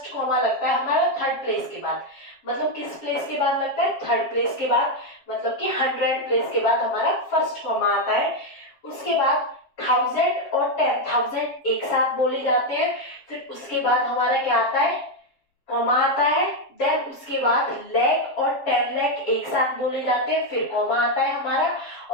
कॉमा लगता है हमारा थर्ड प्लेस के बाद। मतलब किस प्लेस के बाद लगता है? थर्ड प्लेस के बाद। मतलब कि 100 प्लेस के बाद हमारा फर्स्ट कॉमा आता है। उसके बाद 1000 और 10,000 एक साथ बोले जाते हैं। फिर उसके बाद हमारा क्या आता है? कॉमा आता है। देन उसके बाद लाख और 10 लाख एक साथ बोले जाते हैं। फिर कॉमा आता है हमारा।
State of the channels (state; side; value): late; right; 7.3 ms